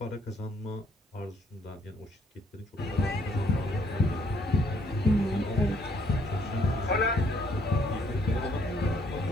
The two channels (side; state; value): both; normal; correlation 0.67